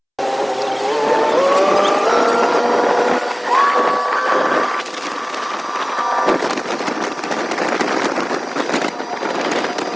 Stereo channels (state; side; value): identical; both; correlation 1.00